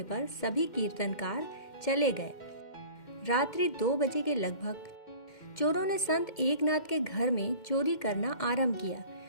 पर सभी कीर्तनकार चले गए। रात्रि 2 बजे के लगभग चोरों ने संत एकनाथ के घर में चोरी करना आरंभ किया।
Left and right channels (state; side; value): late; right; 2.1 ms